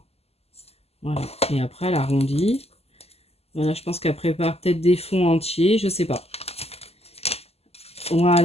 Voilà, et après elle arrondit. Voilà, je pense qu'elle prépare peut-être des fonds entiers, je sais pas.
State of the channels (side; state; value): right; late; 0.29 ms